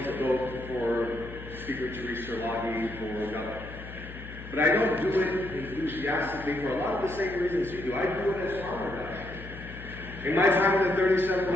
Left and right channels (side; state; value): left; noise; hum, 13 dB below the sound